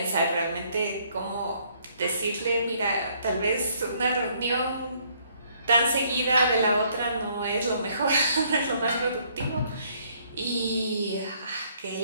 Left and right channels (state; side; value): inverted; both; correlation -0.66